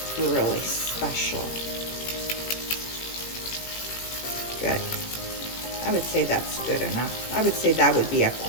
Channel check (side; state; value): right; late; 18 ms